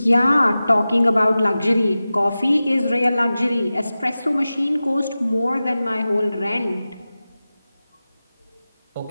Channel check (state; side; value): inverted; both; correlation -0.95